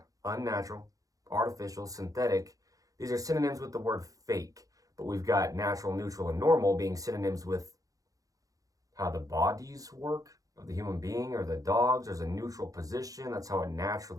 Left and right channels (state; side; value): late; left; 0.17 ms